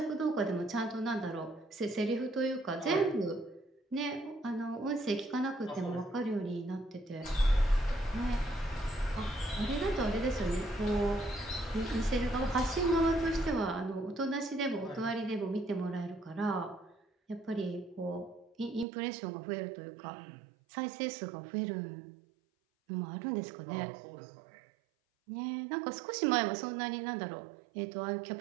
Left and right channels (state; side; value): drops out; left; at 18.9 s